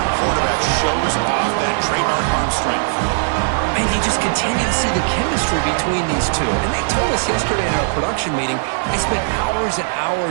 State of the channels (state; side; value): silent; left; 67 dB below the other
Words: quarterback shows off that trademark arm strength. And you just continue to see the chemistry between these two. And they told us yesterday in our production meeting, they spent hours and